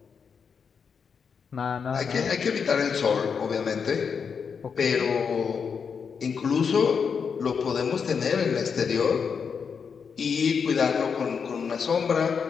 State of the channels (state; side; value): quieter; right; 6.2 dB